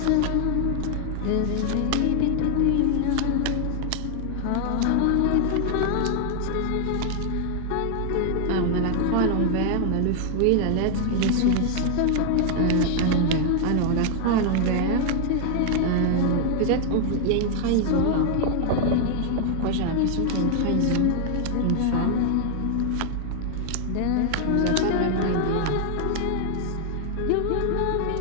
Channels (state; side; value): different; both; correlation 0.00